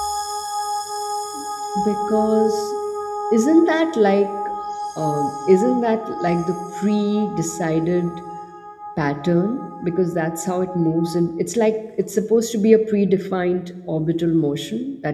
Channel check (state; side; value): identical; both; correlation 1.00